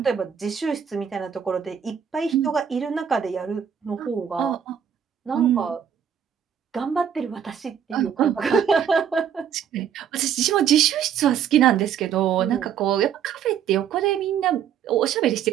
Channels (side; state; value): left; quieter; 8.4 dB